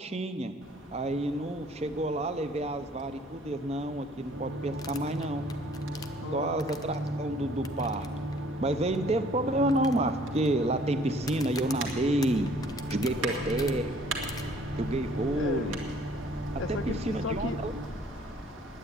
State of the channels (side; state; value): both; normal; correlation 0.57